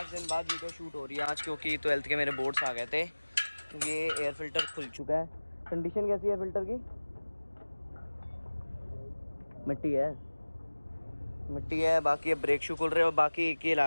दिन बाद वीडियो शूट हो रही है आज, क्योंकि 12th के मेरे बोर्ड्स आ गए थे। ये एयर फिल्टर खुल चुका है। कंडीशन कैसी है फिल्टर की? मिट्टी है। बाकी अब ब्रेक शू खुल रहे हैं और बाकी एक ही लाया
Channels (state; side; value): inverted; both; correlation -1.00